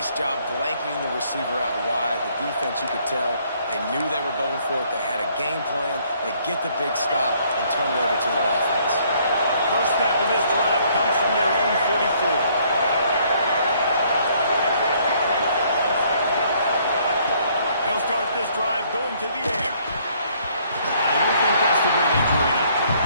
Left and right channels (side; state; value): both; inverted; correlation -0.65